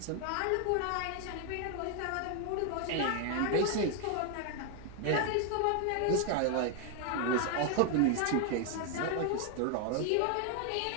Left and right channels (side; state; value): both; different; correlation 0.00